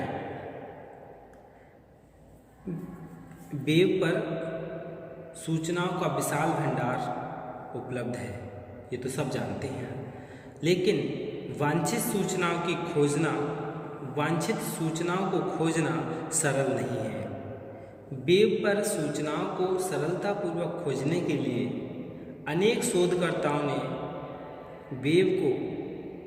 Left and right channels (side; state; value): both; identical; correlation 1.00